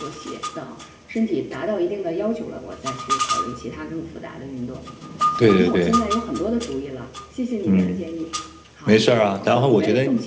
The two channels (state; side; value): identical; both; correlation 1.00